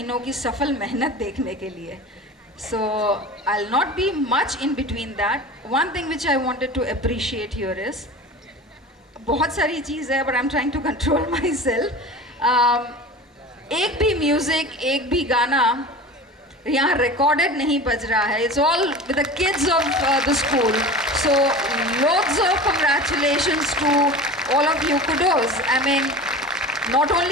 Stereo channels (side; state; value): both; normal; correlation 0.34